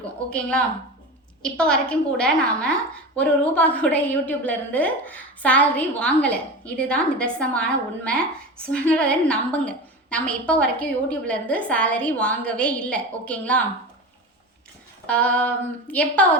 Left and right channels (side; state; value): both; normal; correlation 0.27